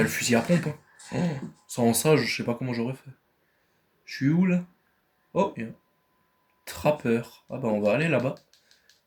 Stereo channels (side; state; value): both; identical; correlation 1.00